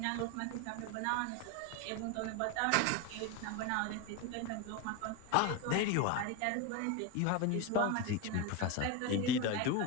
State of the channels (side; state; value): both; different; correlation 0.02